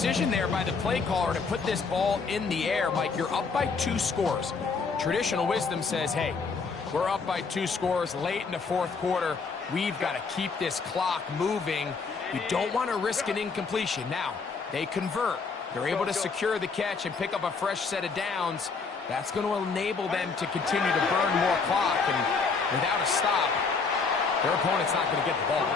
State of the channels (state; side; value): quieter; right; 4.8 dB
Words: there by the play caller to put this ball in the air. Mike, you're up by 2 scores. Traditional wisdom says, hey, we're up by 2 scores late in the fourth quarter. We've got to keep this clock moving. You don't want to risk an incompletion. Now, they convert. They're able to secure the catch and pick up a fresh set of downs. That's going to enable them to continue to burn more clock. And without a stop, their opponent's not going to get the ball.